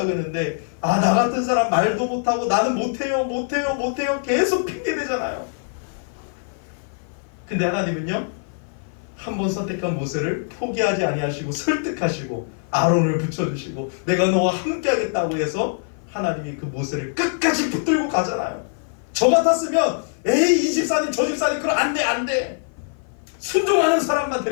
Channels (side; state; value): right; silent; 55 dB below the other